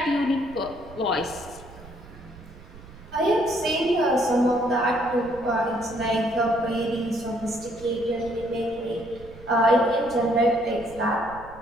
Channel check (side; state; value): right; noise; rumble, 19 dB below the sound